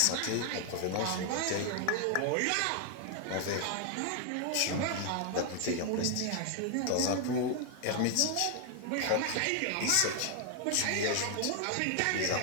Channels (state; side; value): different; both; correlation 0.00